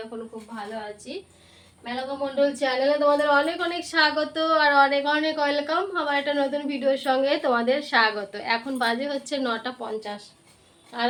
এখনো খুব ভালো আছি। মেনকা মণ্ডল চ্যানেলে তোমাদের অনেক অনেক স্বাগত আর অনেক অনেক ওয়েলকাম। আমার একটা নতুন ভিডিওর সঙ্গে তোমাদের স্বাগত। এখন বাজে হচ্ছে 9:50, আর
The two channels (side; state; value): both; identical; correlation 1.00